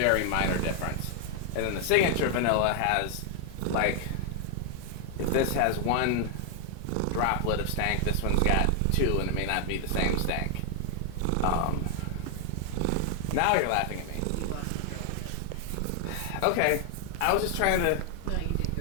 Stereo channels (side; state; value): both; different; correlation 0.00